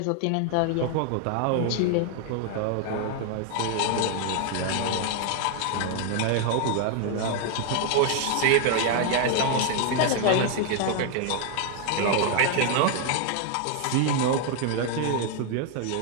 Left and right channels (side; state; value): both; different; correlation 0.00